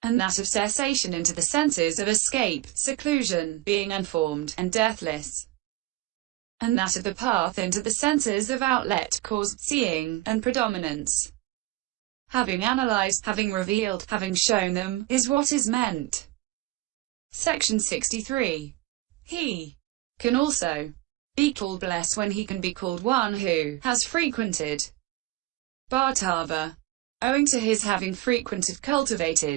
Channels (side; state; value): left; quieter; 17.1 dB